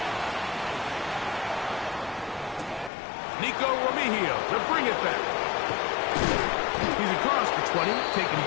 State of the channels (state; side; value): drops out; right; at 2.9 s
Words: Nico Remigio to bring it back. He's across the 20, taken